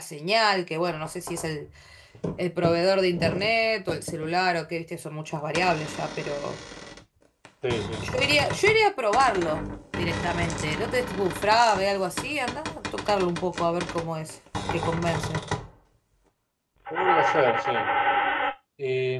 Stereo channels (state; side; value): identical; both; correlation 1.00